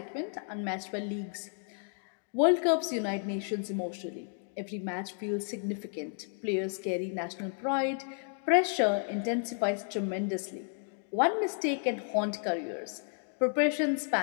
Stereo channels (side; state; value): right; silent; 56 dB below the other